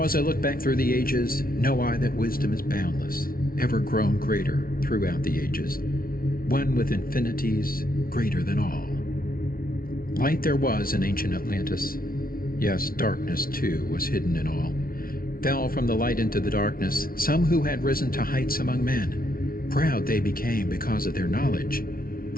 as I look back through the ages, know I that wisdom is boundless, ever grown greater throughout the ages, one with infinities greater than all. Light there was in ancient Atlantis. Yes, darkness too was hidden in all. Fell from the light into the darkness some who had risen to heights among men. Proud they became because of their knowledge.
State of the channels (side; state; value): right; late; 0.43 ms